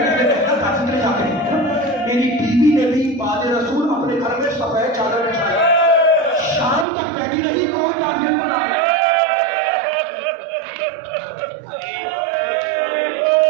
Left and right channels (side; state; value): left; drops out; at 6.9 s